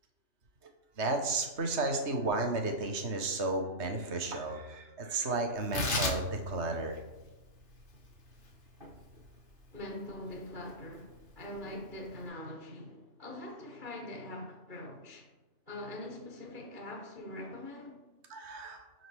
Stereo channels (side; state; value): left; late; 2.9 ms